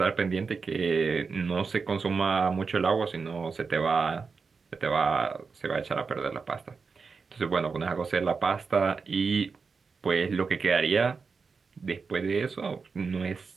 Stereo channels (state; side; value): quieter; left; 5.0 dB